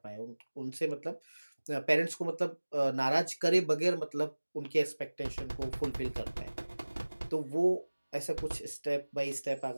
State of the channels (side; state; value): both; inverted; correlation -1.00